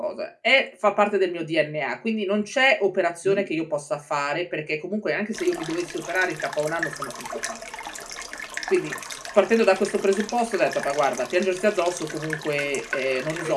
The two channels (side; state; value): both; identical; correlation 1.00